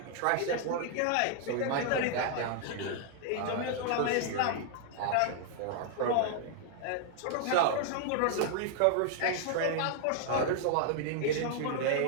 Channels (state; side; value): different; both; correlation 0.00